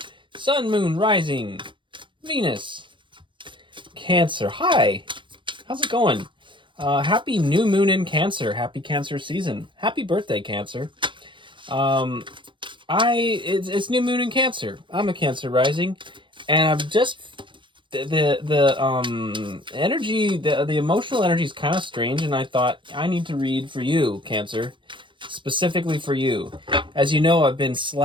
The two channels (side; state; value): left; late; 0.24 ms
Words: Sun, Moon, Rising, Venus. Cancer, hi! How's it going? Happy new moon in Cancer. Happy Cancer season. Happy birthday, Cancer. It's new moon in Cancer. I'm a Cancer rising, and I've just the energy, the emotional energy is kind of strange, and I thought I need to read for you, Cancer, specifically for you. As you know, I've been